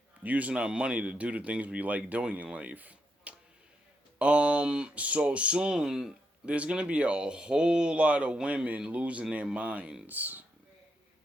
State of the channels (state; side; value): normal; both; correlation 0.81